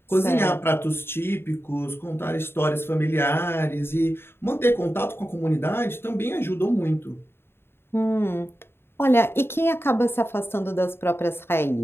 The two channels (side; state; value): right; late; 0.11 ms